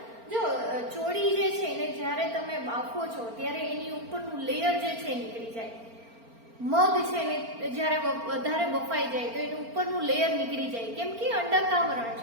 જો ચોળી જે છે એને જ્યારે તમે બાફો છો ત્યારે એની ઉપરનું લેયર જે છે નીકળી જાય. મગ છે એને જ્યારે વધારે બફાઈ જાય તો એનું ઉપરનું લેયર નીકળી જાય, કેમ કે અંડકાવરણ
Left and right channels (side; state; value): left; late; 4.4 ms